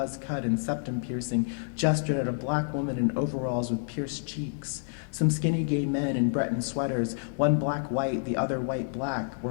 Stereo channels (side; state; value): right; silent; digital silence